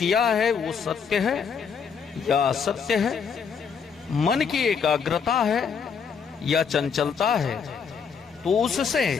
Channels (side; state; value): right; quieter; 6.4 dB